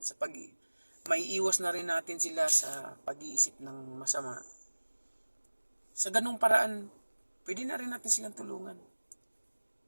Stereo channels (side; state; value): both; inverted; correlation -1.00